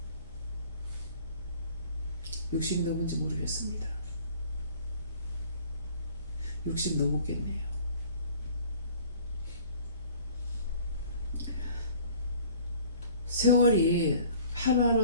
60 넘은지 모르겠습니다. 60 넘었겠네요. 세월이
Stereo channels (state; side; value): inverted; both; correlation -0.50